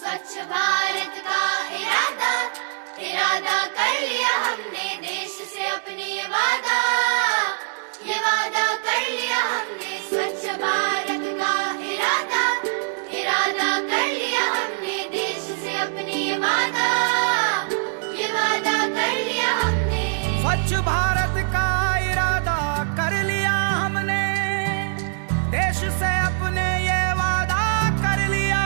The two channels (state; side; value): silent; left; 63 dB below the other